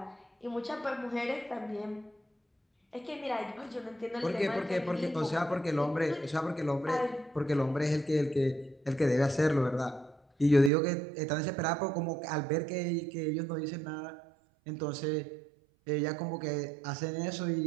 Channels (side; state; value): left; drops out; at 10.7 s